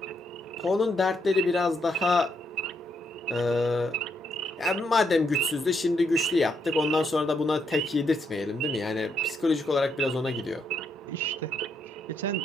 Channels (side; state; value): both; normal; correlation 0.77